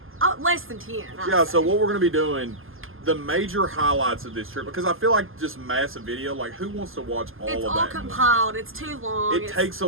less than 10. Yeah. So what we're gonna be doing, the major highlights of this trip, because I feel like just massive video, like who wants to watch all of that? It's all compiled. It's too long. It takes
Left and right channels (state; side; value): late; left; 0.59 ms